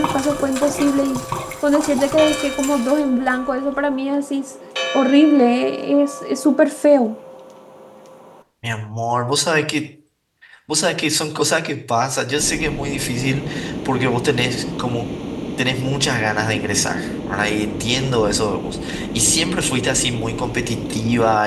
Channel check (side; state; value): both; identical; correlation 1.00